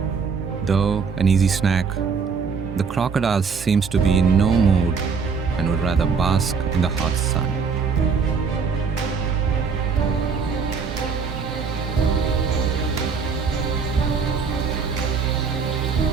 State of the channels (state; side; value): quieter; left; 5.5 dB